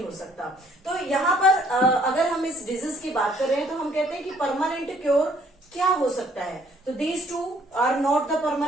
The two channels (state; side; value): normal; both; correlation 0.62